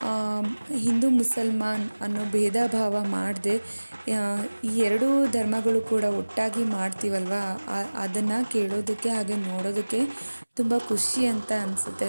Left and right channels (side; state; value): both; inverted; correlation -1.00